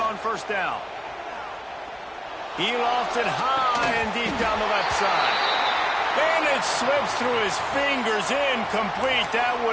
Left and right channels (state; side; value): identical; both; correlation 1.00